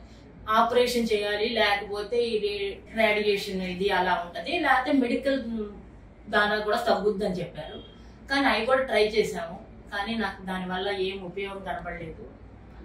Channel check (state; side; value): identical; both; correlation 1.00